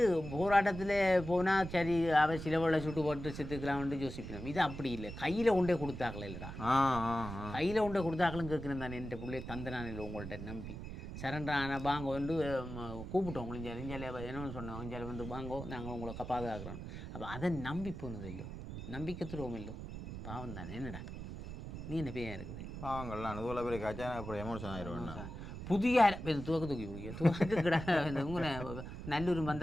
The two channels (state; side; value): noise; right; rumble, 9 dB below the sound